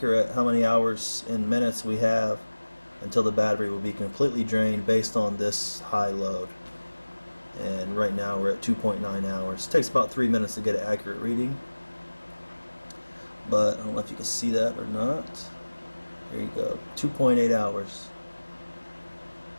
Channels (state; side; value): inverted; both; correlation -1.00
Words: how many hours and minutes we have until the battery will be completely drained based on this high load. And right now we're at 2.9 hours. It takes about 3 minutes to get an accurate reading, but I don't know if you can see that or not. There you go, 2.8 hours.